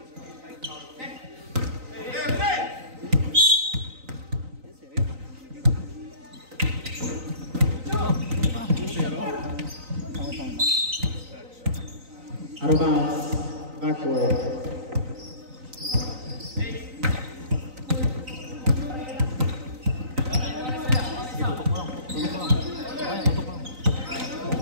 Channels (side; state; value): left; late; 3.9 ms